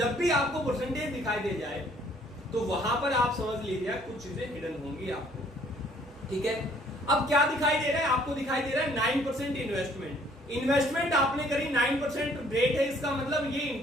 भी आपको परसेंटेज दिखाई दे जाए तो वहां पर आप समझ लीजिए कुछ चीजें हिडन होंगी आपको, ठीक है। अब क्या दिखाई दे रहा है आपको? दिखाई दे रहा है 9% इन्वेस्टमेंट आपने करी, 9% रेट है, इसका मतलब ये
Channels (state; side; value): normal; both; correlation 0.61